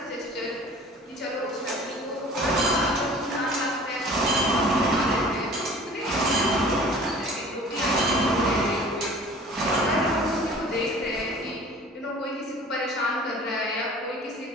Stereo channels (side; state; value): both; normal; correlation 0.47